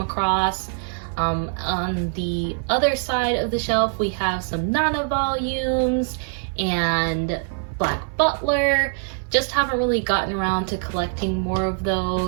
across. On the other side of the shelf we have some Nana volumes and Black Butler. Just haven't really gotten around to collecting more of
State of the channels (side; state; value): left; silent; digital silence